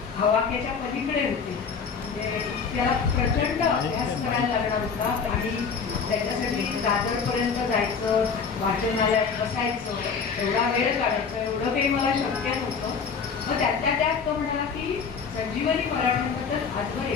हवाक्याच्या पलीकडे होते. त्याला प्रचंड अभ्यास करायला लागणार होता आणि त्याच्यासाठी दादरपर्यंत जायचं, वाचनालयात बसायचं, एवढा वेळ काढायचं, एवढं काही मला शक्य नव्हतं. मग त्यातल्या त्यात तो म्हणाला की संजीवनी मराठीबद्दल आजवर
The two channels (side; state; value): right; quieter; 5.8 dB